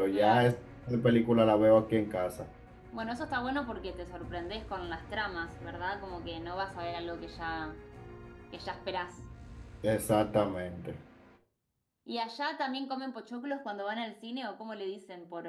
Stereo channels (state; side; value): identical; both; correlation 1.00